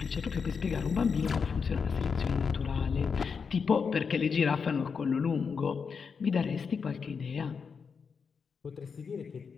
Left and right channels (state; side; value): quieter; right; 5.8 dB